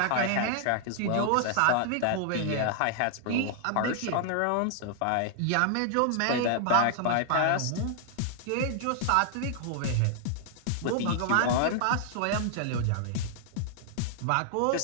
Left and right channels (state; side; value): different; both; correlation -0.01